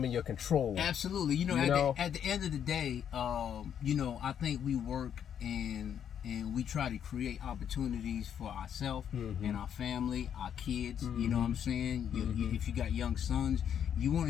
and your control. Absolutely. At the end of the day, I think we work and we try to create opportunities for ourselves and our family, our kids. You know what I'm saying? If you got young sons, you want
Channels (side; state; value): right; quieter; 8.8 dB